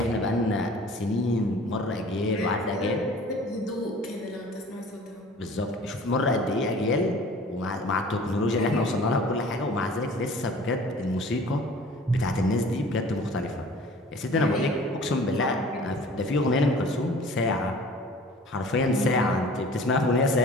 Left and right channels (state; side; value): normal; both; correlation 0.46